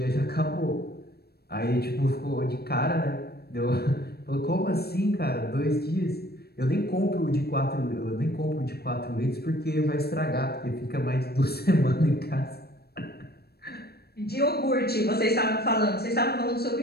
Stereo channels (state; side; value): late; right; 0.46 ms